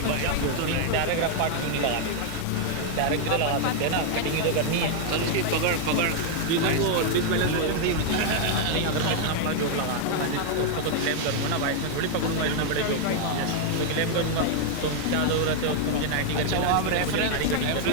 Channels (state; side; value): different; both; correlation 0.00